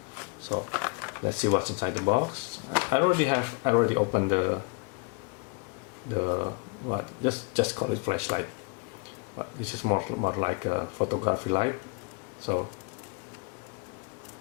So let's see what's inside the box. I already opened just call it flashlight, but this is more like a photography light. So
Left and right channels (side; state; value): right; quieter; 30.9 dB